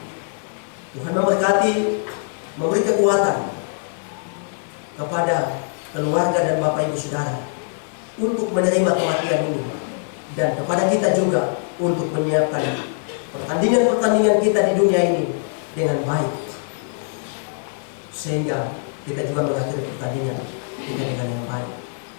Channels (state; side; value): silent; right; digital silence